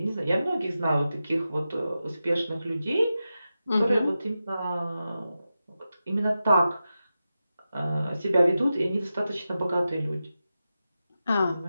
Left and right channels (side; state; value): both; inverted; correlation -0.92